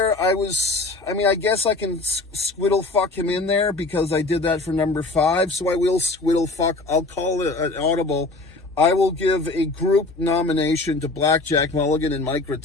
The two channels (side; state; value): right; quieter; 3.2 dB